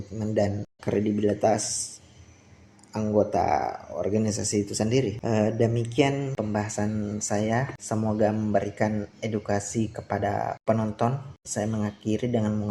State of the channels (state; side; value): identical; both; correlation 1.00